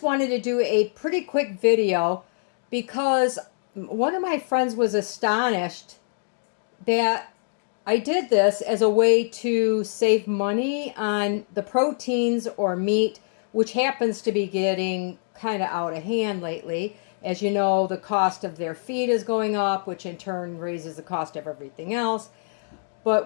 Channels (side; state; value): right; silent; digital silence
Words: wanted to do a pretty quick video because one of my friends was astonished that I did this as a way to save money on the proteins or meat, which happens to be getting kind of out of hand lately. As you know, the cost of their feed is going up, which in turn raises the cost of everything else. But